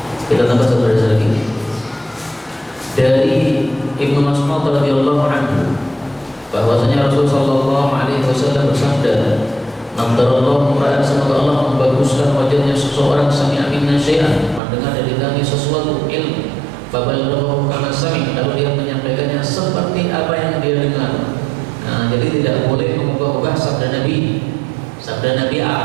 Kita tambah satu hadis lagi dari Ibnu Mas'ud radhiyallahu anhu, bahwasanya Rasulullah sallallahu alaihi wasallam bersabda, "Nadarallahu ra'an," semoga Allah membaguskan wajahnya seseorang, sami'a minna syai'an, mendengar dari kami sesuatu ilmu, fabalaghahu kama sami', lalu dia menyampaikannya seperti apa yang dia dengar. Nah, jadi tidak boleh mengubah-ubah sabda Nabi. Sabda Nabi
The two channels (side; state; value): left; drops out; at 14.6 s